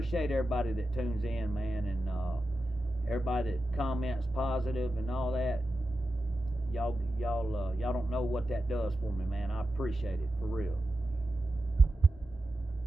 everybody that tunes in, man, and everybody that comments positive and all that. Y'all don't know what that does for me, man. I appreciate it, for real.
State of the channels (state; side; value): normal; both; correlation 0.91